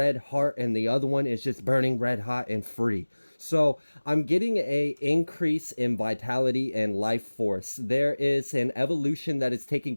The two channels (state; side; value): inverted; both; correlation -1.00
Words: heart, and the other one is just burning red hot and free. So I'm getting a increase in vitality and life force. There is an evolution that is taking